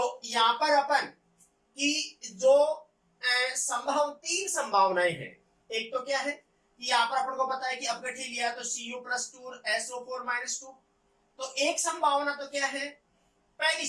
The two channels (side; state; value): both; identical; correlation 1.00